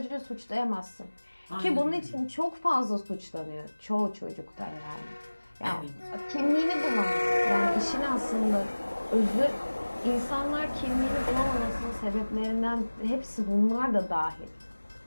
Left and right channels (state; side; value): inverted; both; correlation -1.00